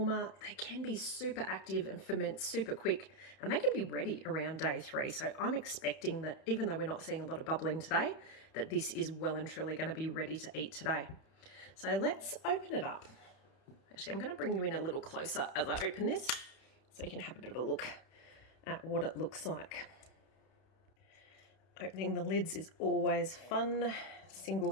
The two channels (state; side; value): late; right; 31 ms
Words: they can be super active and ferment super quick, and they can be ready around day 3. So I'm expecting that even though we're not seeing a lot of bubbling today, that this is well and truly going to be ready to eat today. So let's open it up. Actually, I'm going to bring you in a little closer as I open this so you can have a bit of a look at what it looks like. Opening the lids is always fun,